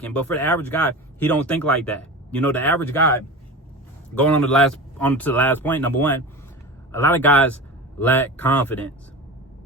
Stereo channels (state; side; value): normal; both; correlation 0.30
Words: But for the average guy, he don't think like that. You know, the average guy, going on to the last point, number one, a lot of guys lack confidence.